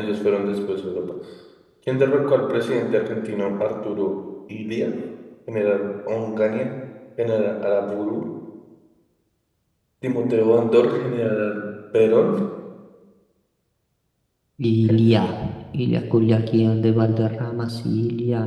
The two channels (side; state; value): both; identical; correlation 1.00